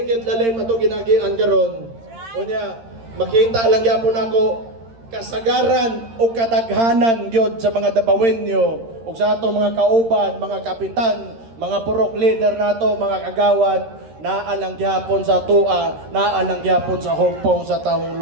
kit lalim ato ginagian karon. Unya makita lang gyapon ako kasagaran o kadaghanan gyud sa mga dabawenyo ug sa ato mga kauban, mga kapitan, mga purok leader nato, mga kagawad naalang gyapon sa tua, naalang gyapon sa hugpong sa tawong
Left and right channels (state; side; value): late; left; 13 ms